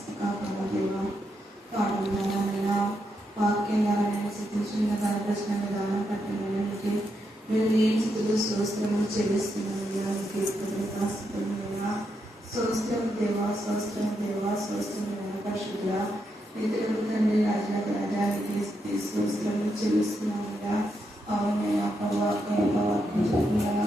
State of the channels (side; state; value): both; normal; correlation 0.82